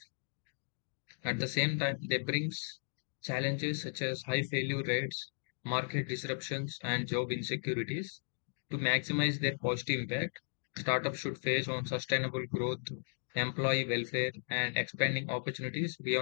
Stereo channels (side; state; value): right; silent; digital silence